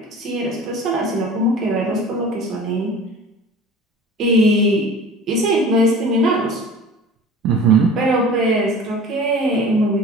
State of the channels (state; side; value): normal; both; correlation 0.40